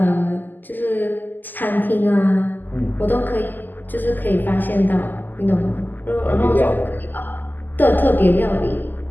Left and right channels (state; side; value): late; right; 0.087 ms